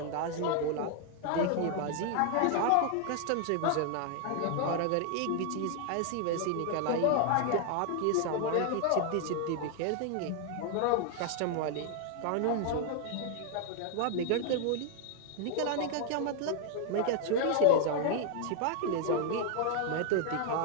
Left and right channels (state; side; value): different; both; correlation 0.00